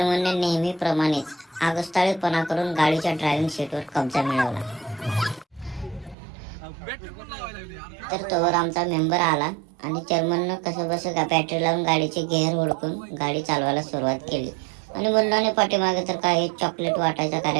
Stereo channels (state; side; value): drops out; left; at 6.2 s